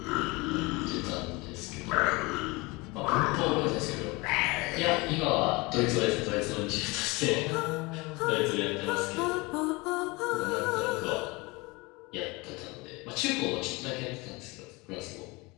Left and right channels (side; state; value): right; quieter; 24.8 dB